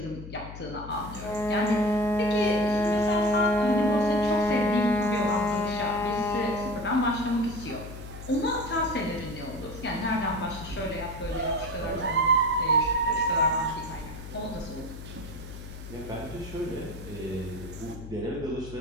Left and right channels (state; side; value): noise; left; hum, 12 dB below the sound